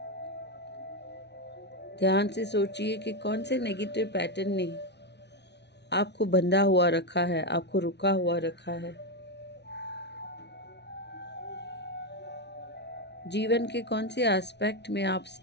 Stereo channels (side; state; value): right; late; 0.50 ms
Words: ध्यान से सोचिए कि कौन से नेगेटिव पैटर्न ने आपको बंधा हुआ रखा है, आपको रुका हुआ रखा है। जीवन के कौन से एस्पेक्ट में आप